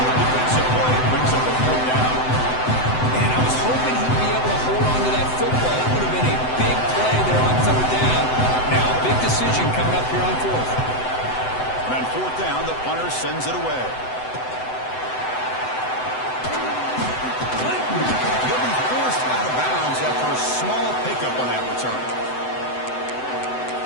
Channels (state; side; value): late; right; 7.9 ms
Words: Good defensive play brings up a 4th down. Hoping he'd be able to hold on to that football. That would have been a big play there on 3rd down. Now a big decision coming up here on 4th. And on 4th down, the punter sends it away. He'll be forced out of bounds after a small pickup on that return.